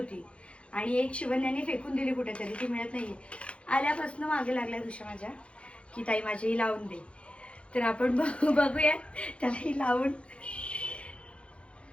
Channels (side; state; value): right; late; 0.060 ms